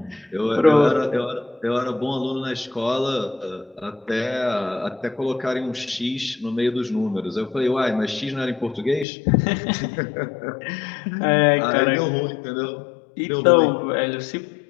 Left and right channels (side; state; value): right; drops out; at 9.1 s